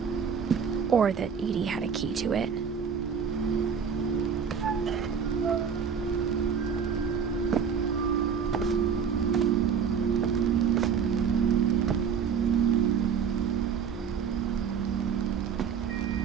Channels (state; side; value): quieter; left; 6.9 dB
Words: Or that Edie had a key to it.